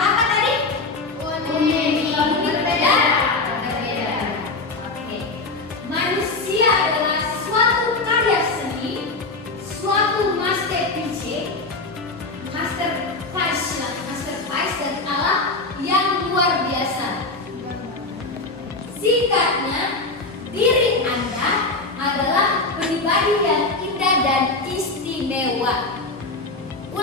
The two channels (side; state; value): right; quieter; 3.4 dB